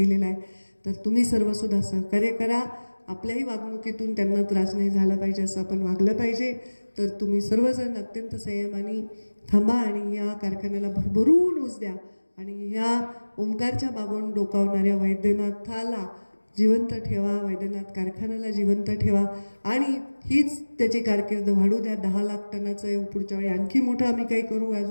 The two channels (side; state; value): both; inverted; correlation -1.00